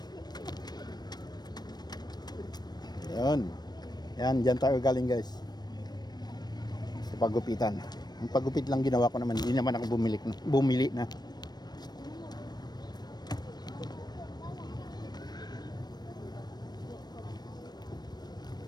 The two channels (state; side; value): late; right; 0.20 ms